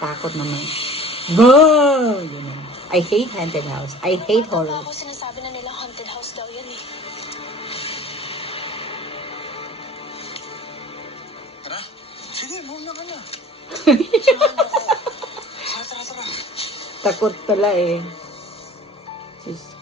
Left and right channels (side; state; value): both; normal; correlation 0.45